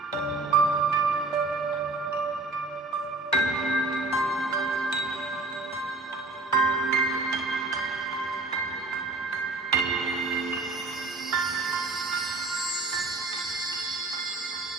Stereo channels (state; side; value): quieter; left; 3.2 dB